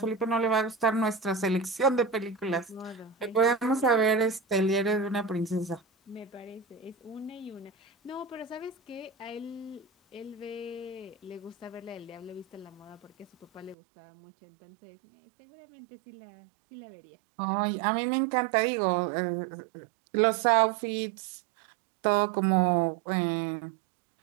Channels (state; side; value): drops out; left; at 13.8 s